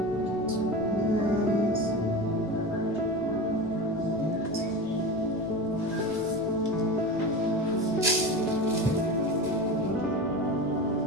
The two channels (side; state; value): right; noise; rumble, 25 dB below the sound